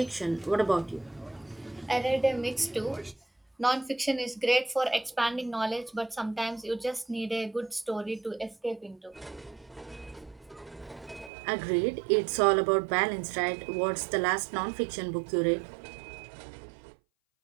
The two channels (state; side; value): drops out; left; at 11.3 s